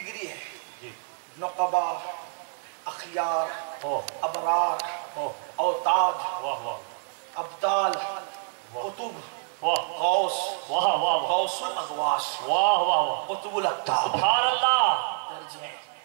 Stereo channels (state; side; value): silent; left; 60 dB below the other